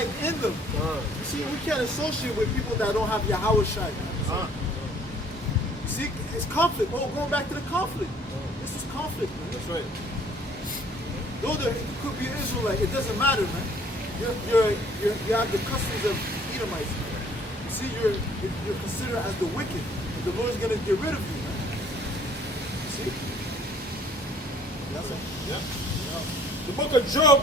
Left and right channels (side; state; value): both; normal; correlation 0.58